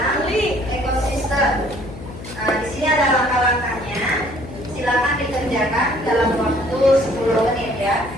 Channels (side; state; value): left; noise; hum, 13 dB below the sound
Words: ekosistem. Nah, di sini ada langkah-langkahnya. Silakan dikerjakan dalam waktu 10 menit ya.